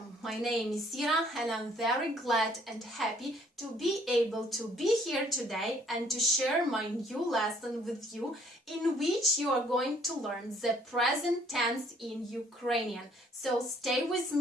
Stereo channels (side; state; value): both; normal; correlation 0.62